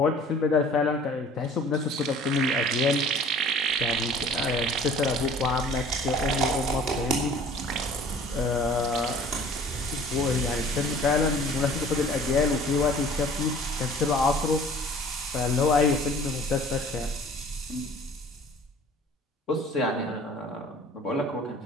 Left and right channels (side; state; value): both; normal; correlation 0.49